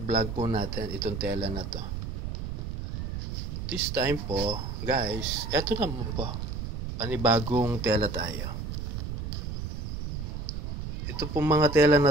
po natin, itong tela na to. This time po, guys, ito naman po. Panibagong tela tayo. Ito po mga tela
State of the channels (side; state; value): right; noise; rumble, 5 dB below the sound